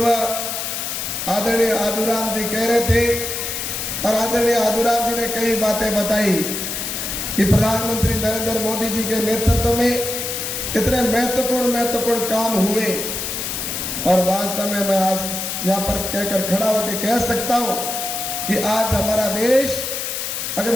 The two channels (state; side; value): noise; left; hiss, 4 dB below the sound